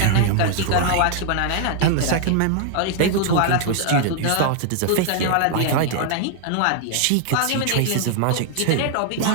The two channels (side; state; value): both; different; correlation 0.00